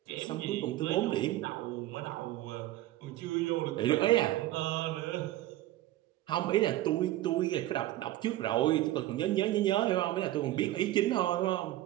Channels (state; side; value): quieter; left; 15.3 dB